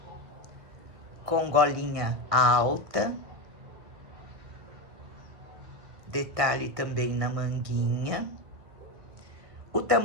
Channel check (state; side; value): late; left; 1.6 ms